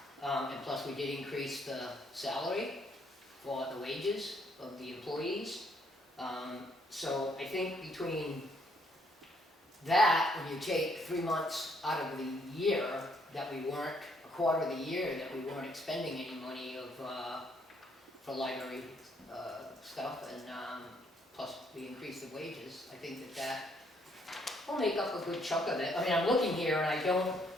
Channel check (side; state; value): both; normal; correlation 0.69